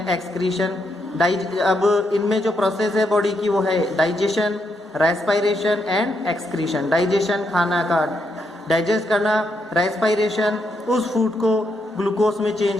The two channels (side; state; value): both; normal; correlation 0.79